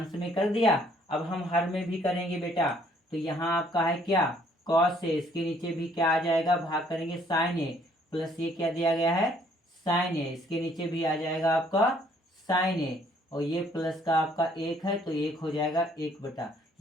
में कर दिया, अब हम हर में भी करेंगे बेटा। तो यहाँ आपका है क्या? कॉस ए, इसके नीचे भी क्या आ जाएगा? भाग करेंगे साइन ए, प्लस ये क्या दिया गया है? साइन ए, इसके नीचे भी आ जाएगा आपका साइन ए, और ये प्लस का आपका 1 है, तो 1 हो जाएगा 1 बटा।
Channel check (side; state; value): both; normal; correlation 0.63